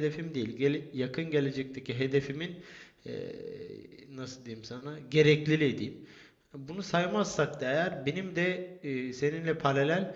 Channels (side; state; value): both; identical; correlation 1.00